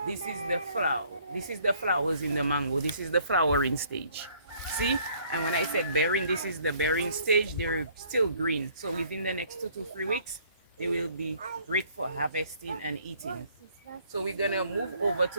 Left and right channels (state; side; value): inverted; both; correlation -0.61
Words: This is the flower. This is the flowers in the mango. This is the flowering stage. See? And when I said bearing, this is the bearing stage. They're still green. So within the next 2 to 3 weeks, they will be great for harvesting and eating. So we're going to move over